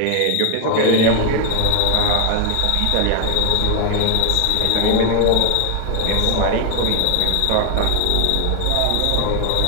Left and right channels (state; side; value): different; both; correlation 0.01